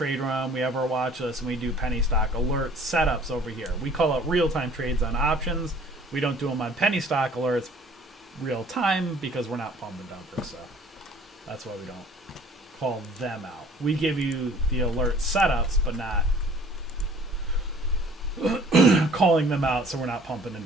room, we have our watch list, and we do penny stock alert setups over here. We call it real-time trades on options. We don't do them on penny stock alerts real-time because we're not pump and dumper, so that's why we don't call them out. We give you the alert setups, but not calling them out, so we're not pumping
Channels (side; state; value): both; normal; correlation 0.53